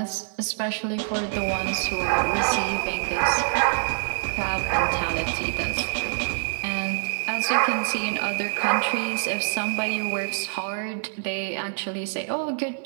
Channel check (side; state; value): left; silent; 61 dB below the other